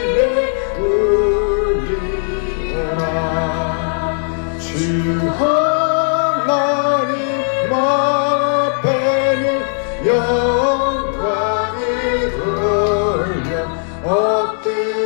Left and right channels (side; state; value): right; silent; digital silence